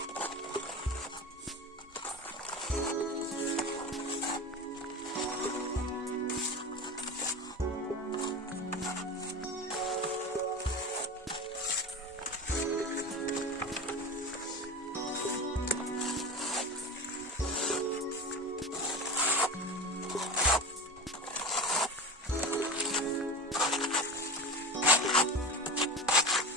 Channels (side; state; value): both; normal; correlation 0.25